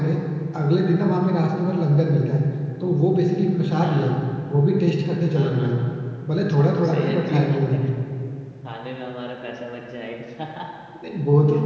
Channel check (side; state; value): both; identical; correlation 1.00